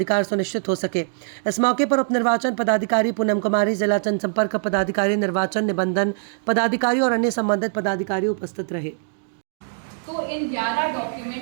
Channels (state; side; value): silent; left; digital silence